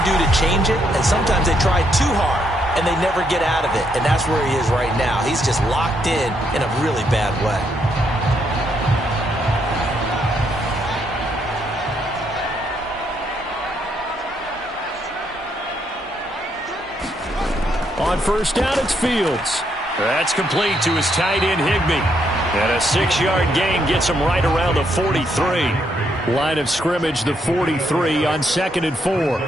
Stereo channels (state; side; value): normal; both; correlation 0.75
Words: do to change it, and sometimes they try too hard, and they never get out of it. And that's where he is right now. He's just locked in a really bad way. On first down, it's Fields. That's complete to his tight end, Higbee. And a 6-yard gain gets him right around the 43. Line of scrimmage, the 43 on 2nd and 4.